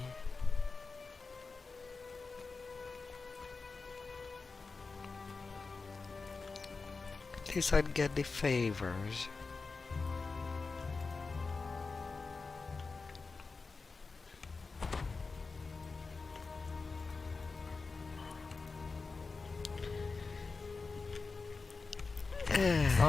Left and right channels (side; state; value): right; quieter; 4.2 dB